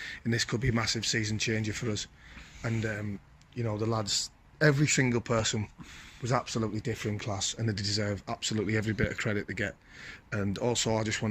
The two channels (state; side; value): identical; both; correlation 1.00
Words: and this could be a massive season changer for us. And, you know, the lads, every single person was absolutely different class, and they deserve absolutely every bit of credit they get. And also, I just